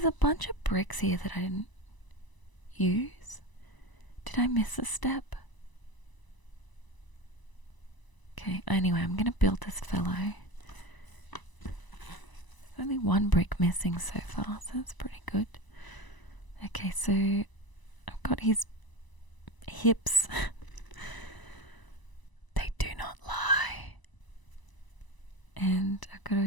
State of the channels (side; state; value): right; late; 1.0 ms